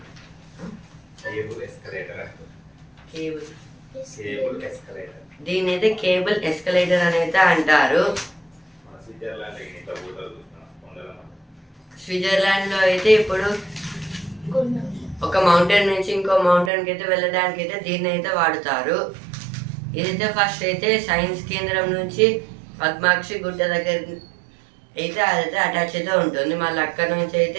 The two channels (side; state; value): left; drops out; at 16.7 s